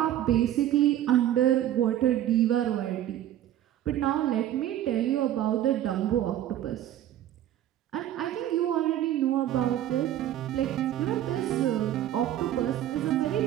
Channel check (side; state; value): left; quieter; 12.2 dB